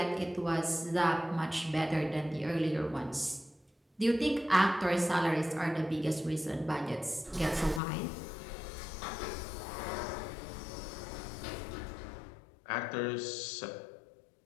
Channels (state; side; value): drops out; right; at 7.8 s